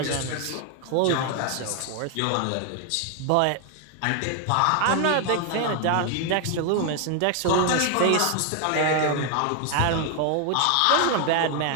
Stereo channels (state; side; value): different; both; correlation 0.00